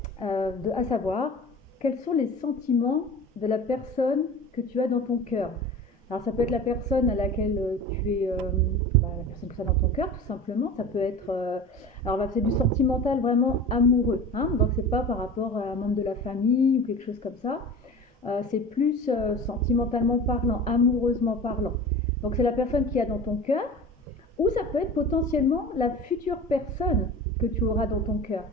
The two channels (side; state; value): both; normal; correlation 0.36